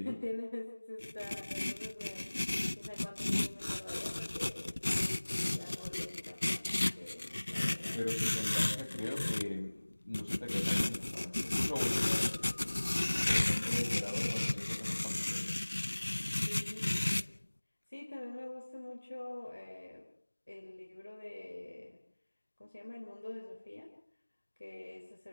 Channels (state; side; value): inverted; both; correlation -1.00